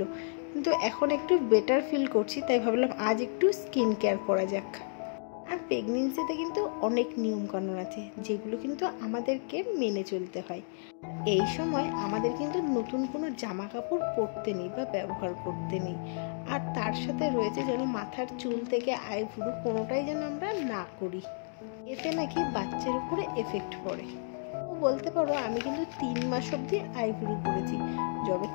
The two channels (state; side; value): silent; right; digital silence